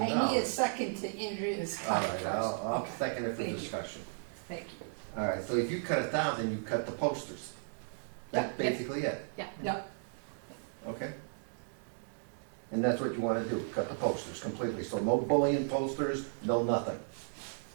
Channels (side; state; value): left; silent; digital silence